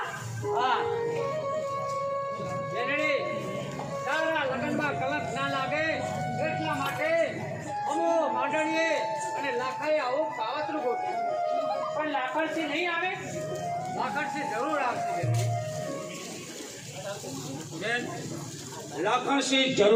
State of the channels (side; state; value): both; identical; correlation 1.00